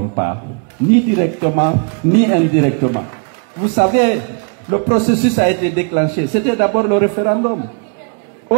pas, ni directement, ni indirectement. Vous savez, le processus a été déclenché. C'était d'abord le référendum.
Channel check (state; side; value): quieter; left; 39.0 dB